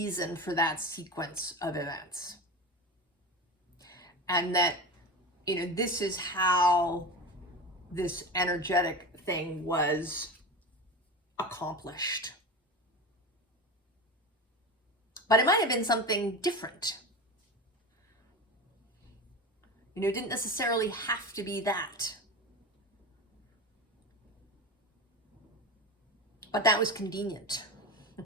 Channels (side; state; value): both; normal; correlation 0.26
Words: for that sequence of events. And that, you know, this is how this energetic thing was accomplished. But it might have been something different. You know, it didn't necessarily have to be that. But that was convenient.